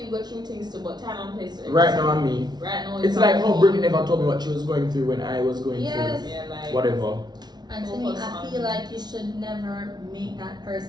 go through things too, but time and place. Right now I'm me. Right now It's like how me. Brittny never told me what she was going through when I was going Yes. through Yeah, like whatever. And to me, I feel like you should never make that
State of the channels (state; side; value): late; left; 0.20 ms